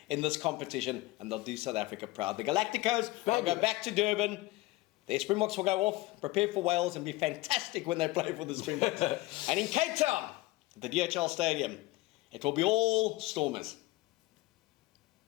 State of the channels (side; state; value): right; quieter; 19.8 dB